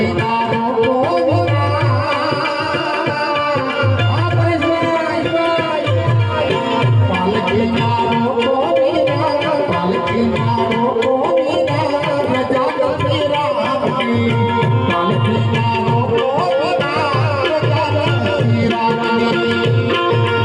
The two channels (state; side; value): identical; both; correlation 1.00